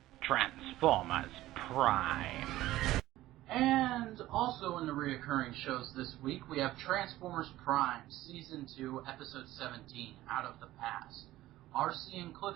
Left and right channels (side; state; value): left; quieter; 15.8 dB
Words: Transformers Prime. And also in the reoccurring shows this week, we have Transformers Prime, Season 2, Episode 17, Out of the Past. RC and